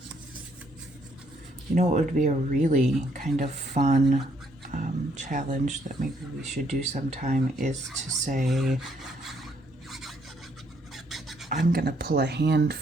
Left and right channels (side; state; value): both; normal; correlation 0.70